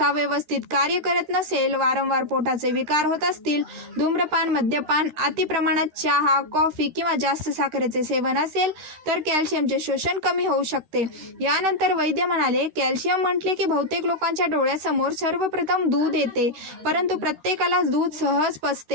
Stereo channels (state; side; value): late; left; 13 ms